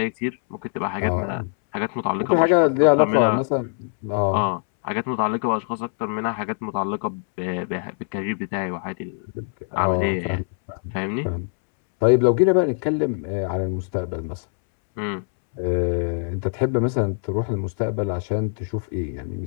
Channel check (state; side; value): silent; right; 63 dB below the other